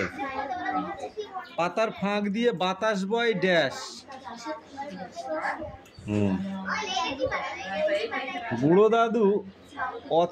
পাতার ফাঁক দিয়ে বাতাস বয় ড্যাশ। বুড়ো দাদু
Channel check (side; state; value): both; identical; correlation 1.00